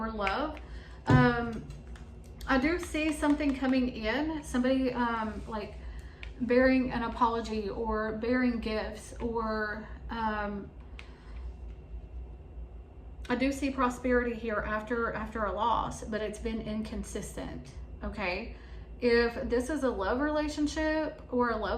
love. I do see something coming in, somebody like bearing an apology or bearing gifts, or I do see prosperity here after a loss, but it's been inconsistent. Okay, if this is a love relationship or a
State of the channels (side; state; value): both; identical; correlation 1.00